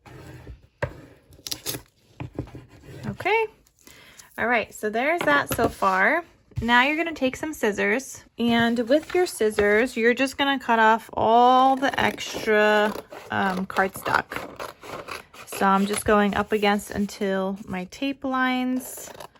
Okay. All right, so there's that so far. Now you're going to take some scissors, and with your scissors, you're just going to cut off all the extra cardstock. So I'm just going up against until my tape lines.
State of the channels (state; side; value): identical; both; correlation 1.00